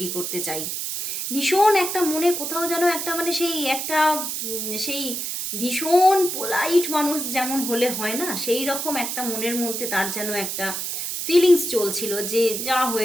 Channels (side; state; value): right; noise; hiss, 3 dB below the sound